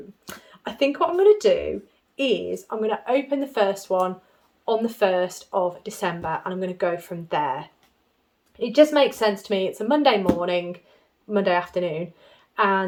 I think what I'm going to do is I'm going to open the first one on the 1st of December, and I'm going to go from there. It just makes sense to me. It's a Monday morning, Monday afternoon,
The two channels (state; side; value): identical; both; correlation 1.00